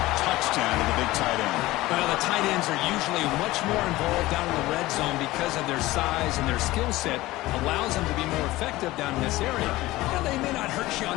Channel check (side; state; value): right; quieter; 18.2 dB